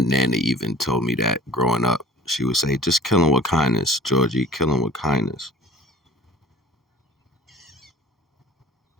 even told me that growing up. She would say, just kill them with kindness, Georgie, kill them with kindness.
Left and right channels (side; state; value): both; normal; correlation 0.48